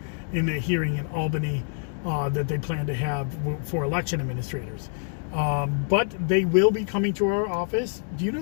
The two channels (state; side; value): silent; right; 61 dB below the other